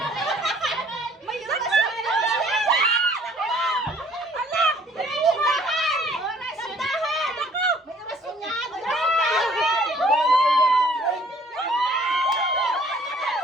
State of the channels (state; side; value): normal; both; correlation 0.58